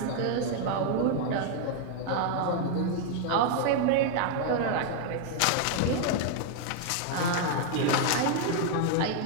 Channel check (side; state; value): both; different; correlation 0.00